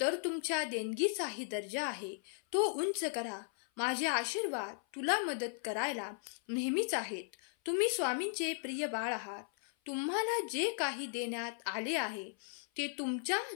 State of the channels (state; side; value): silent; right; 53 dB below the other